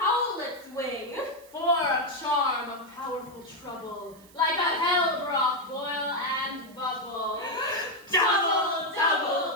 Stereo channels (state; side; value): noise; right; hiss, 25 dB below the sound